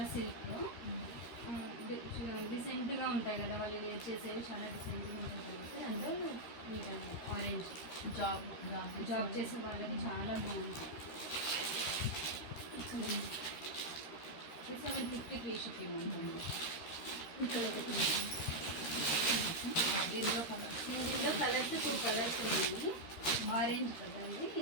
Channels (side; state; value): right; late; 13 ms